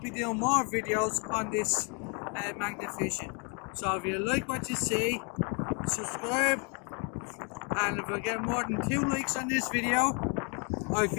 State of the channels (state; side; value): quieter; right; 35.7 dB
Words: doing more videos on this magnet fishing. So if you like what you see, subscribe, and if I get more than 2 likes on this video, I'll